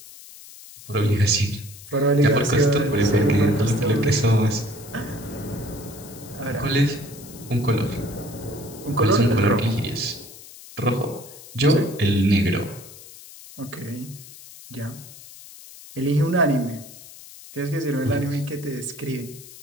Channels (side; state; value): left; noise; hiss, 18 dB below the sound